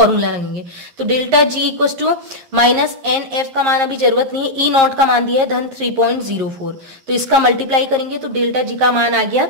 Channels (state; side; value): late; left; 11 ms